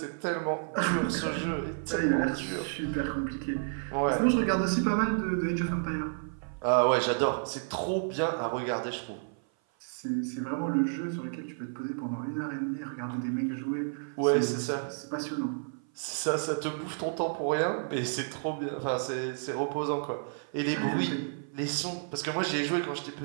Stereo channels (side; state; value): left; silent; 55 dB below the other